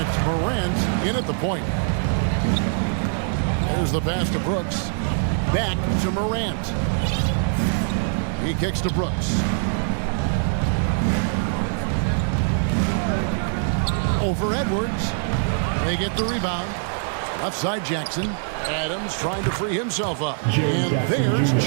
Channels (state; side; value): silent; left; digital silence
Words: Morant in at the point. There's the pass to Brooks. Back to Morant. He kicks to Brooks. Over Edwards. They get the rebound. Left side Jackson. Adams trying to free himself up. And there's